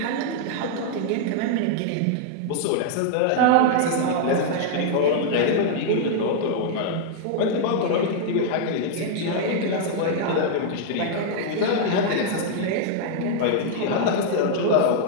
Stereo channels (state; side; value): different; both; correlation -0.01